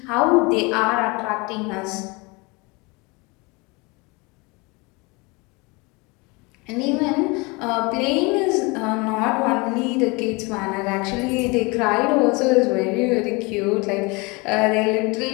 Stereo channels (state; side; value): quieter; right; 27.0 dB